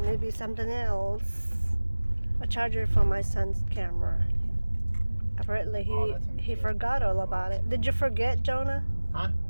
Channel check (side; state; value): both; inverted; correlation -1.00